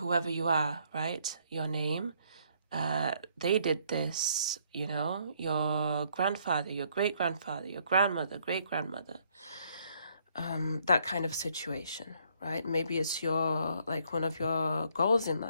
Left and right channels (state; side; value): inverted; both; correlation -0.68